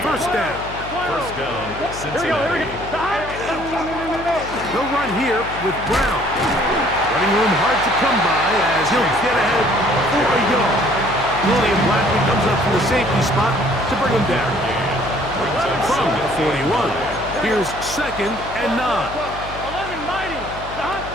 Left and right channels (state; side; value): noise; left; hum, 13 dB below the sound